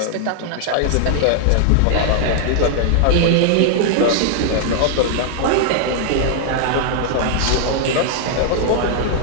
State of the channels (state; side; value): different; both; correlation 0.00